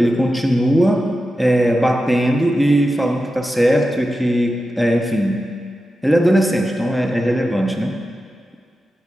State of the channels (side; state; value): both; normal; correlation 0.91